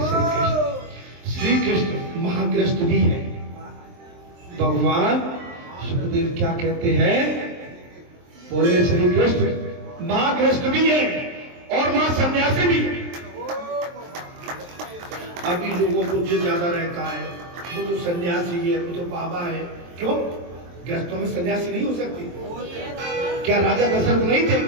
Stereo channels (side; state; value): left; late; 23 ms